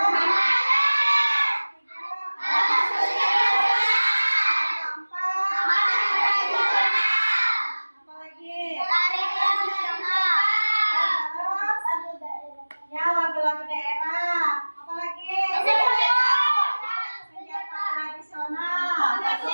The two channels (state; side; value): inverted; both; correlation -1.00